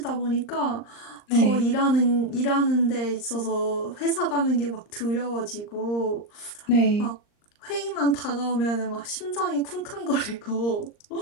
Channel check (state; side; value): late; right; 39 ms